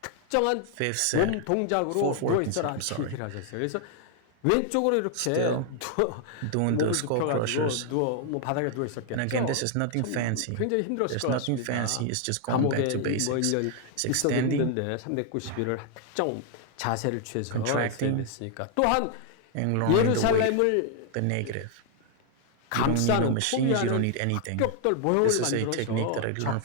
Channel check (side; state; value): both; different; correlation 0.00